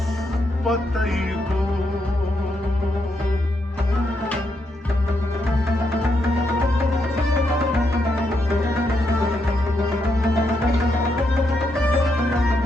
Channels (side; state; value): both; normal; correlation 0.80